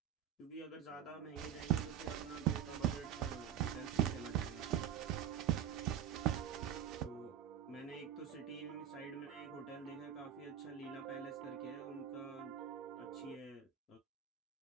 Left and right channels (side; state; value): left; quieter; 9.6 dB